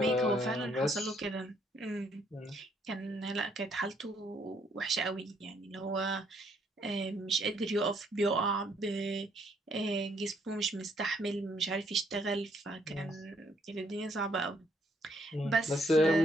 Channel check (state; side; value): normal; both; correlation 0.70